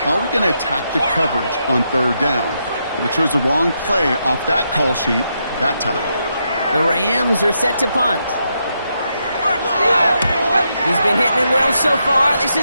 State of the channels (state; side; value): inverted; both; correlation -0.81